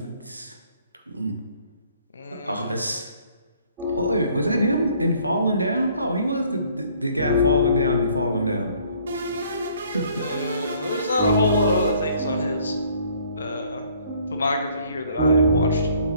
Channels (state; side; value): inverted; both; correlation -0.60